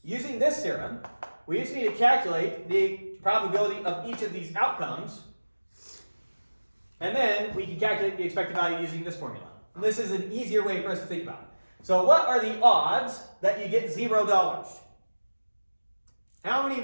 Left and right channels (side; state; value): both; inverted; correlation -1.00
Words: using this theorem, we just need to calculate the probability of each of these outcomes, and then we can calculate the expected value using this formula. And this is an easier way for us to think about it. So what are the odds that you get $0? How many